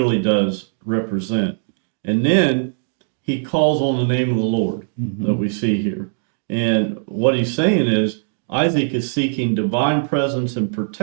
does represent. And then he calls on the name of the Lord that we see here. And what he's saying is Isaac is seeking divine presence and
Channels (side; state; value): left; silent; digital silence